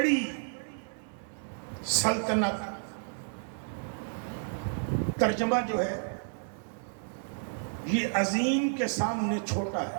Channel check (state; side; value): silent; left; digital silence